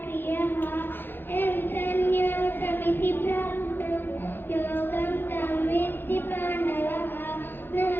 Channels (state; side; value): late; right; 0.10 ms